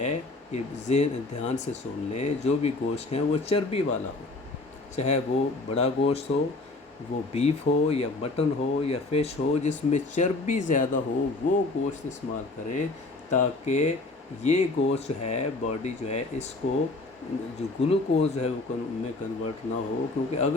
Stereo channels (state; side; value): quieter; right; 3.2 dB